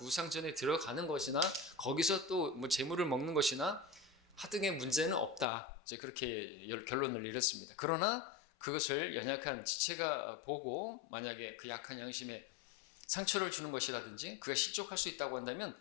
우상 전에 들어가는 것이나 거기서 또 뭐 제물을 먹는 것이나 하등의 문제는 없다, 이제 그렇게 결론을 내렸습니다. 그러나 그것을 연약한 지체가 보고 만약에 그 약한 양심에 상처를 주는 것이라든지 그가 실족할 수 있다고 한다면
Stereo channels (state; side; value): drops out; right; at 5.5 s